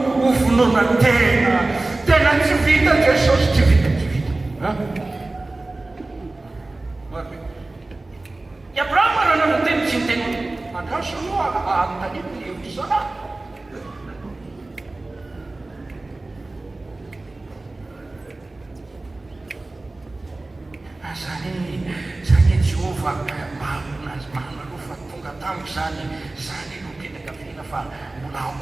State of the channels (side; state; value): left; quieter; 3.0 dB